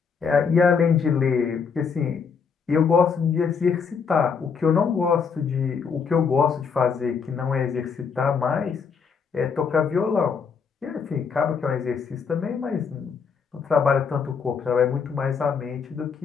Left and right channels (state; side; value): quieter; right; 6.0 dB